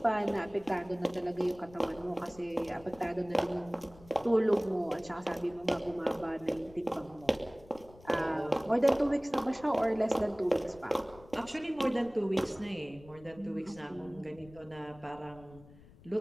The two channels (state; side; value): noise; left; rumble, 22 dB below the sound